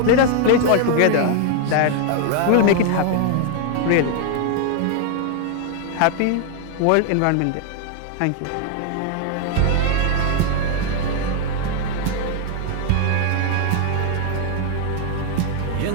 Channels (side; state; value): both; different; correlation 0.00